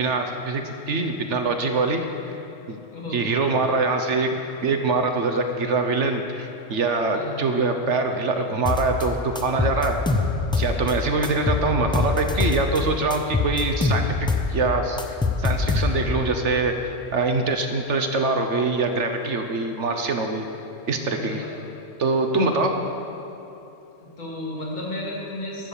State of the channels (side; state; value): both; normal; correlation 0.07